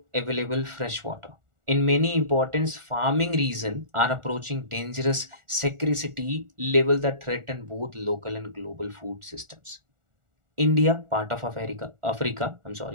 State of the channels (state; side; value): late; left; 1.4 ms